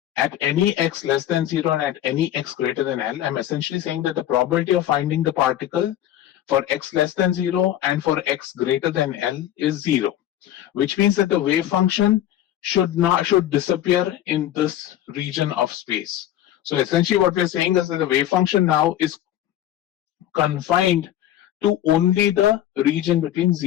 at any x less than 0 and at any x greater than L, I'm essentially saying that the probability of finding the particle for x less than 0 and for x greater than L is 0, which means that the wave function should disappear in this region of space. So essentially what we're saying is that the wave function now is confined to only the region between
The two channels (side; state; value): right; quieter; 12.2 dB